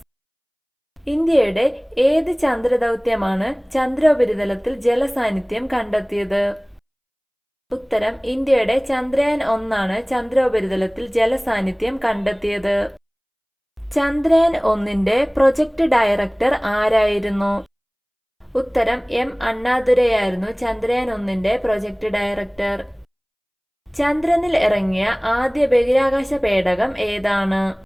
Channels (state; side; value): identical; both; correlation 1.00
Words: ഇന്ത്യയുടെ ഏത് ചന്ദ്രദൗത്യമാണ് ചന്ദ്രോപരിതലത്തിൽ ജലസാന്നിധ്യം കണ്ടെത്തിയത്? ഉത്തരം ഇന്ത്യയുടെ ചന്ദ്രയാൻ 1 ചന്ദ്രോപരിതലത്തിൽ ജലസാന്നിധ്യം കണ്ടെത്തിയത്. ചന്ദ്രയാൻ 1 പ്രൊജക്ട് ഡയറക്ടർ ആരായിരുന്നു? ഉത്തരം M അണ്ണാദുരൈയായിരുന്നു ചന്ദ്രയാൻ 1 പ്രൊജക്ട് ഡയറക്ടർ. ചന്ദ്രനിൽ ഇറങ്ങിയ ആദ്യ ബഹിരാകാശ പേടകം ഏതാണ്?